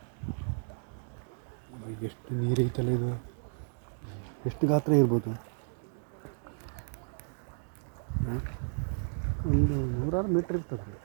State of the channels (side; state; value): left; silent; digital silence